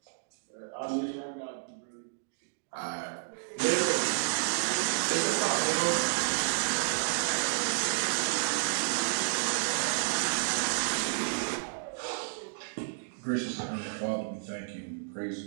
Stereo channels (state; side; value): silent; left; digital silence